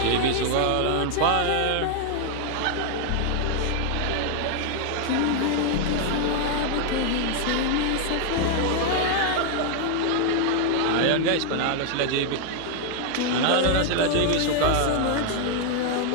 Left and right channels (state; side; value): different; both; correlation 0.00